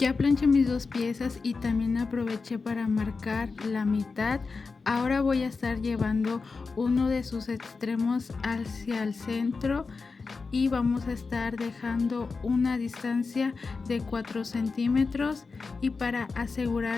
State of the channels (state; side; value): quieter; right; 4.4 dB